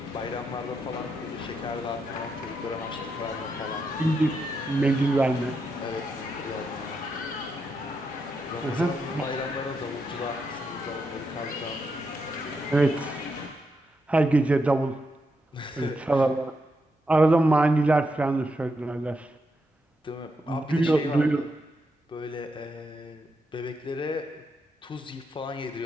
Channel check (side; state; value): both; normal; correlation 0.83